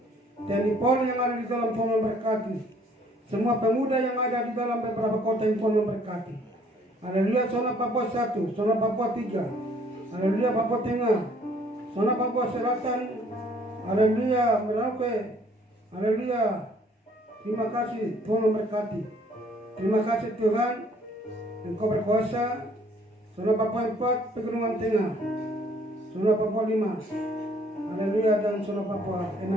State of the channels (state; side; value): normal; both; correlation 0.60